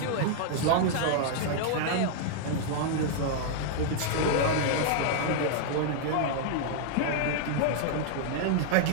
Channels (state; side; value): different; both; correlation -0.01